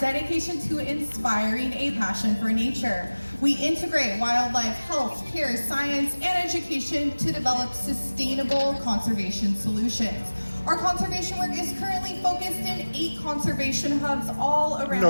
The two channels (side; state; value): both; inverted; correlation -1.00